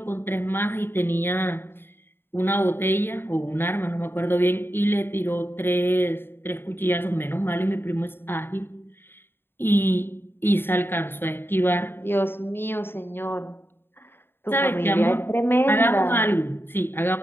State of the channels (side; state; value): right; late; 0.11 ms